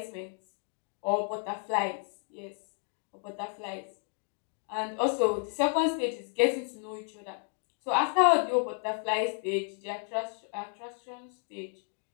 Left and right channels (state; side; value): quieter; right; 39.7 dB